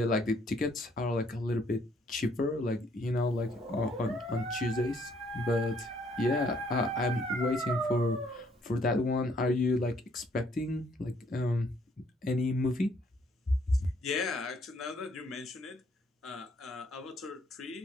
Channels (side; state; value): both; normal; correlation 0.66